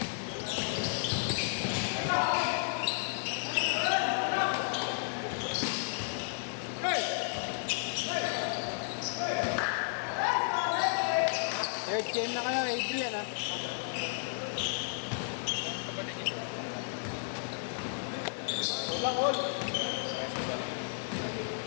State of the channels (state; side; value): silent; right; 56 dB below the other